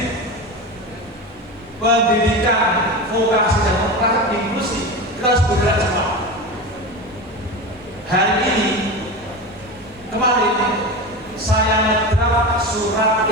Pendidikan Vokasi dan Vokasi Inklusi. Kita harus bergerak cepat. Hari ini, kemarin saya ngedraft surat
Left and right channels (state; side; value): normal; both; correlation 0.25